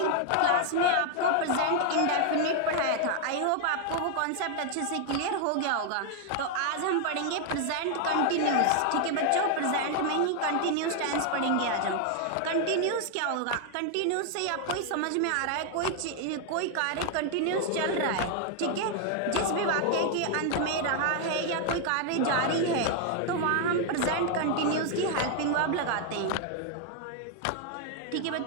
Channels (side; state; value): both; different; correlation 0.00